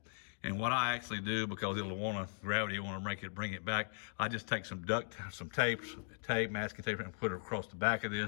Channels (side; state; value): right; silent; digital silence